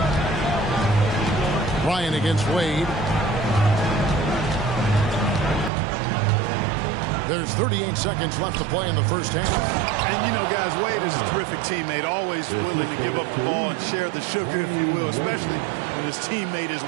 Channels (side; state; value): left; drops out; at 5.7 s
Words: Ryan against Wade. There's 38 seconds left to play in the first half. And, you know, guys, Wade is a terrific teammate, always willing to give up the ball and share the sugar, if you will, especially when his teammate is